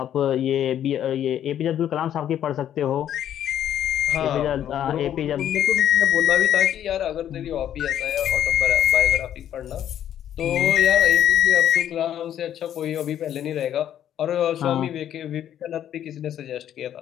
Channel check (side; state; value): right; quieter; 10.6 dB